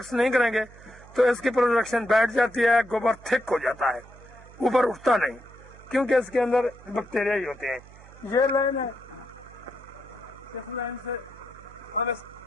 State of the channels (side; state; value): right; noise; hum, 21 dB below the sound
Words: नहीं करेंगे तो इसकी प्रोडक्शन बैठ जाती है, गोबर थिक हो जाता है, ऊपर उठता नहीं, क्योंकि इसके अंदर बैक्टीरिया ही होते हैं। ये लाइन है, इस लाइन से हम